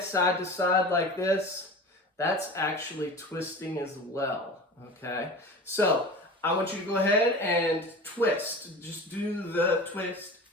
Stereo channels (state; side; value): normal; both; correlation 0.34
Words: side to side like this, that's actually twisting as well, okay? So I want you to go ahead and twist. Just do the twist.